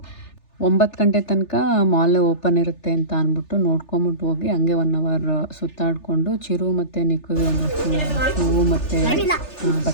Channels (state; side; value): late; right; 3.4 ms